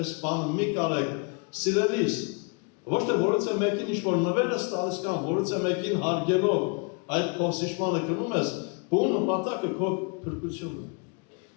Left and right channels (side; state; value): right; quieter; 35.3 dB